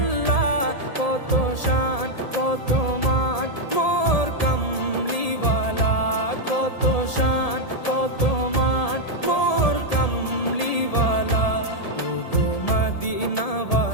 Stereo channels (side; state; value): right; late; 1.8 ms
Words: কত শান কত মান মোর কামলিওয়ালা, কত শান কত মান মোর কামলিওয়ালা। ও গো